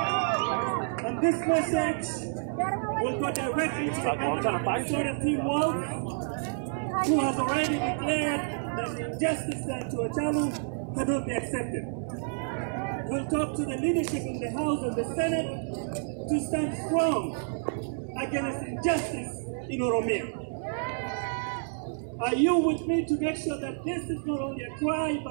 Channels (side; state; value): left; silent; digital silence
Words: And this message will go directly to the governor of Minnesota, Tim Walz, who has already declared that the injustice done to Hachalu cannot be accepted. We'll talk to the leadership in the House and the Senate to stand strong against injustice in Oromia. Are you with me to make sure that this is not only a cry